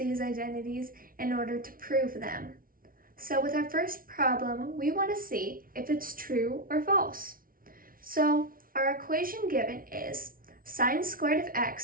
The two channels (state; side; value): late; left; 0.42 ms